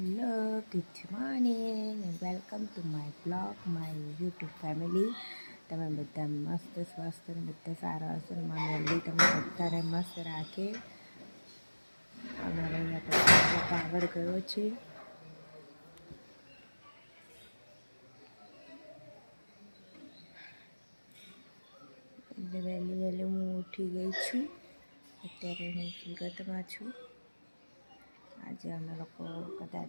good morning and welcome to my blog, my YouTube family. તમે બધા મસ્ત સ્વસ્થ અને બધા સારા હશો ને મારી અલ્લી તમને બધાને મસ્ત રાખે. અમારે અહીંયા પછી પાવર ગયો છે એટલે વહેલી વહેલી હું ઉઠી ગઈ છું. અત્યારે હું સુરતમાં છું. આજે અમે લોકો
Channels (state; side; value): inverted; both; correlation -1.00